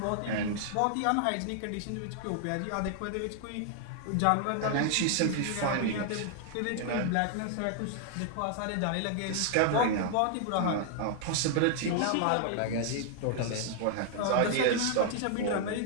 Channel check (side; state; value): both; different; correlation 0.00